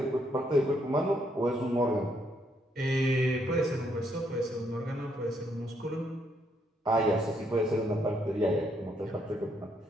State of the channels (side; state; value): both; normal; correlation 0.73